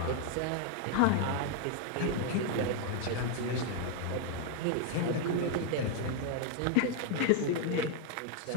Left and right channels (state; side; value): different; both; correlation 0.01